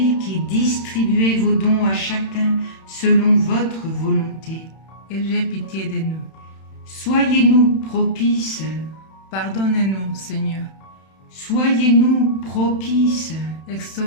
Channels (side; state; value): right; late; 31 ms